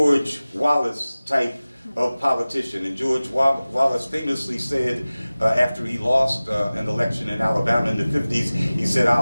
Wallace type of politician. And George Wallace famously said, after he lost an election in Alabama in the 50s, he said,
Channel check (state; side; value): inverted; both; correlation -0.98